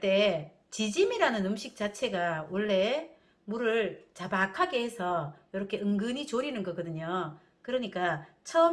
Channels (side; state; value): both; identical; correlation 1.00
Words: 때 지짐이라는 음식 자체가 원래 물을 자박하게 해서 이렇게 은근히 졸이는 거거든요. 그러니까